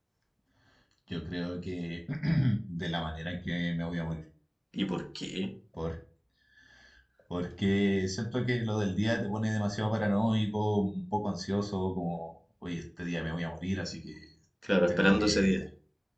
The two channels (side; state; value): both; identical; correlation 1.00